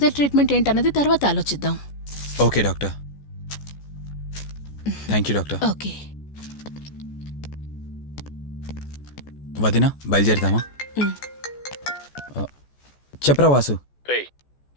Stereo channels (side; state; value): right; late; 14 ms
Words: ట్రీట్మెంట్ ఏంటన్నది తర్వాత ఆలోచిద్దాం. Okay doctor. Thank you doctor. Okay. వదినా, బయలుదేరదామా? చెప్పరా వాసు. రే,